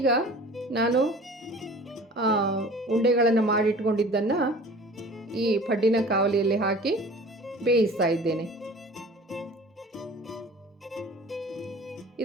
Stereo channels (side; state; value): both; normal; correlation 0.44